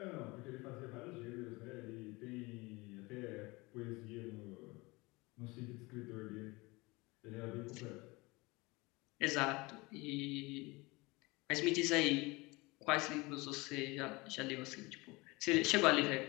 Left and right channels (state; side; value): quieter; right; 23.9 dB